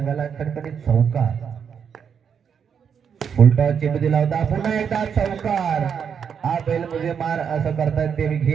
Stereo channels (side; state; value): left; quieter; 7.2 dB